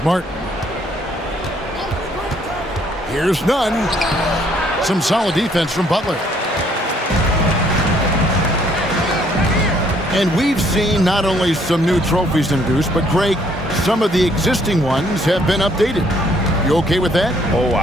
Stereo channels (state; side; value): normal; both; correlation 0.65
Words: Martin. Here's none. Some solid defense from Butler. And we've seen not only some new trophies introduced, but Greg, some of the existing ones have been updated. You okay with that? Oh,